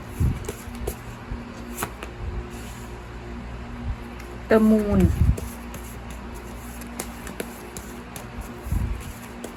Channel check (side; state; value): both; identical; correlation 1.00